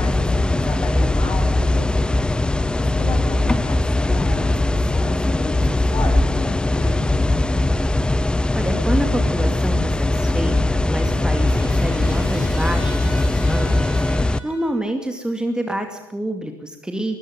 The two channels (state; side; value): normal; both; correlation 0.94